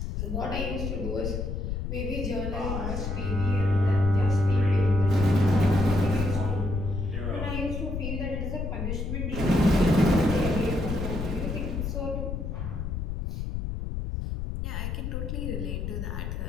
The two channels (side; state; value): left; noise; rumble, 3 dB below the sound